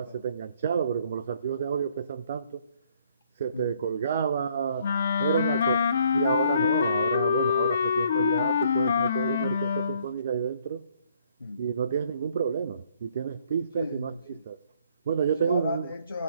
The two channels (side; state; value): both; inverted; correlation -0.65